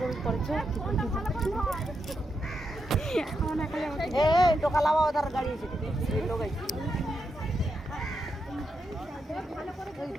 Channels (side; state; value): both; normal; correlation 0.84